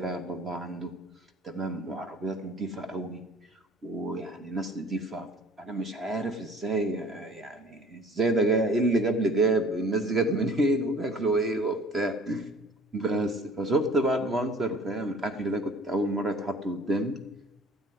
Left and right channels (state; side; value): normal; both; correlation 0.50